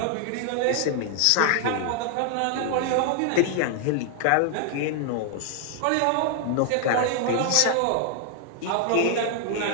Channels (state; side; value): different; both; correlation 0.00